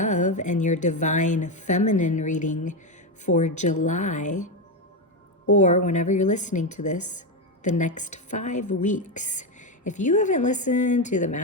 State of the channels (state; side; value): normal; both; correlation 0.10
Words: and your Divine Feminine reading for July, or whenever you're listening to this, the next 5 weeks. If you haven't listened to the